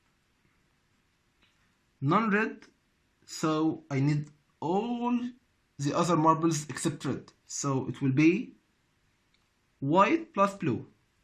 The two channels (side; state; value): both; identical; correlation 1.00